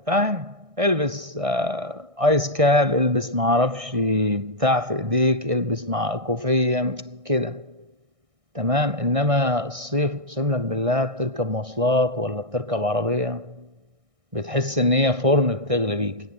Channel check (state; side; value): late; left; 1.6 ms